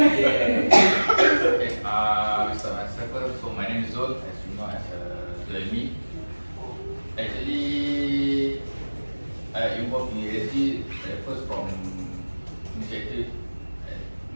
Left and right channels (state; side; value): inverted; both; correlation -1.00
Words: Okay, we start myself first. So my name is Zul, as you know, as Zulmi. Actually, I involved in ESG first from initiative,